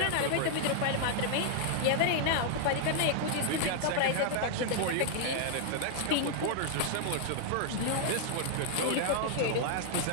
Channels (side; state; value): both; different; correlation -0.01